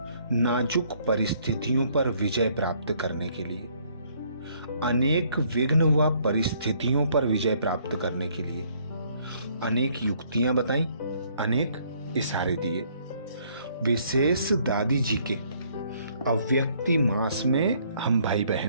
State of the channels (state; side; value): inverted; both; correlation -0.64